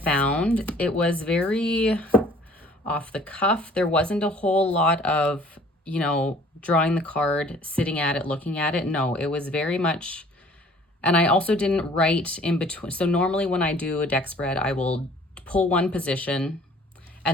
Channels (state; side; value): normal; both; correlation 0.53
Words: It was very off the cuff. There wasn't a whole lot of, you know, drawing the card, sitting at it, looking at it. No, it was very much, and I also didn't write in between. So normally when I do a deck spread, I will pull one position